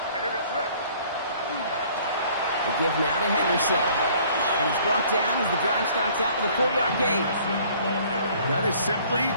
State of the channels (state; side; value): inverted; both; correlation -0.55